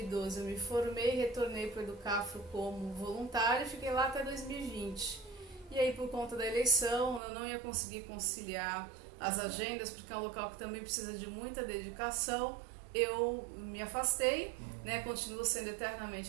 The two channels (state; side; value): drops out; left; at 7.2 s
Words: eu me formei, retornei para o Educafro como voluntária e fiquei lá até 2020. E aí por conta da eleição eu não ia conseguir conciliar as agendas, porque é um local que também precisa de muita dedicação. Eu me afastei, né, continuo sendo